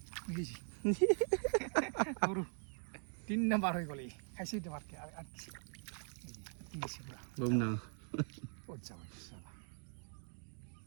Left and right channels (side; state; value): left; silent; 50 dB below the other